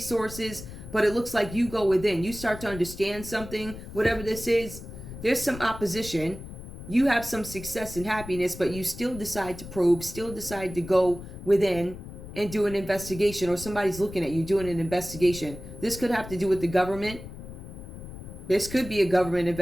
but it looks like you go within. You start to understand something, whatever this is. There's some opposition. You have some success and happiness, but you still decide to probe, still decide to go within and do an investigation, or somebody's looking at you doing an investigation. This could have to do with the government. This could be a government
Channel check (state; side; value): noise; left; rumble, 12 dB below the sound